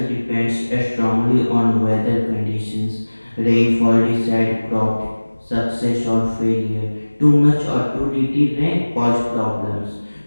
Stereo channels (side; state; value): both; inverted; correlation -1.00